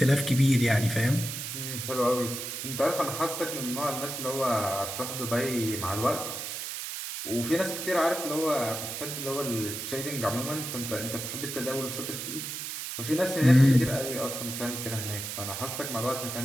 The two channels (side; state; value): right; noise; hiss, 6 dB below the sound